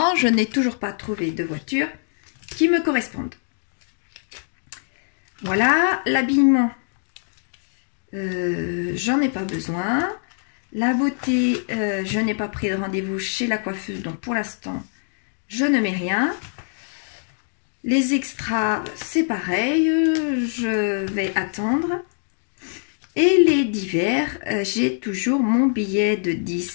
je n'ai toujours pas trouvé de voiture qui me corresponde. Voilà, l'habillement, j'en ai pas besoin. La beauté, je n'ai pas pris de rendez-vous chez la coiffeuse, donc pour l'instant, je ne mets rien. Les extras, c'est pareil, je vais attendre. Et les divers, j'ai toujours mon billet de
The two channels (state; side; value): silent; right; digital silence